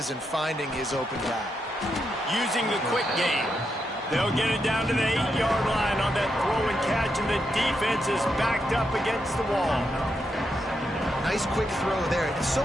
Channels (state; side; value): normal; both; correlation 0.83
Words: and finding his open guy. Using the quick game. They'll get it down to the 8-yard line on that throw and catch, and the defense is backed up against the wall. Nice quick throw there. It's so